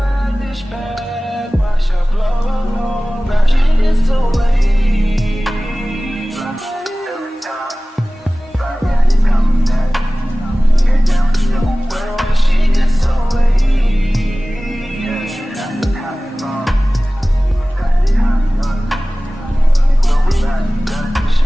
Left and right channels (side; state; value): both; normal; correlation 0.97